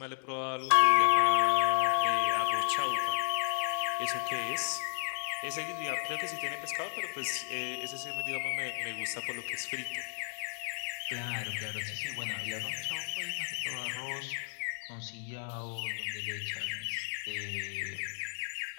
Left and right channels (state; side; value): silent; right; 55 dB below the other